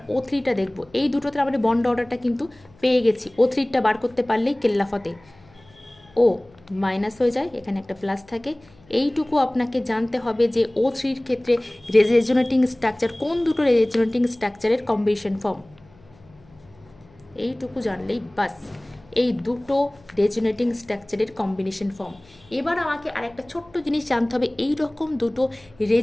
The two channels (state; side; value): noise; left; hum, 28 dB below the sound